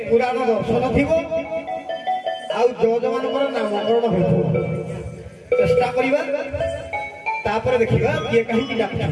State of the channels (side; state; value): both; identical; correlation 1.00